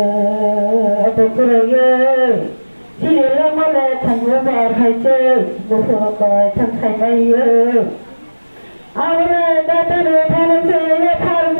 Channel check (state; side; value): inverted; both; correlation -1.00